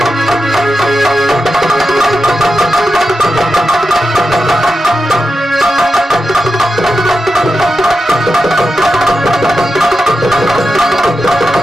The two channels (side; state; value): both; normal; correlation 0.90